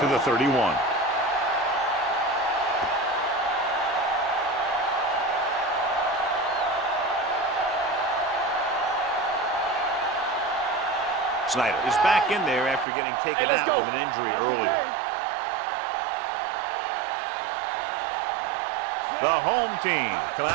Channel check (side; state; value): left; drops out; at 12.9 s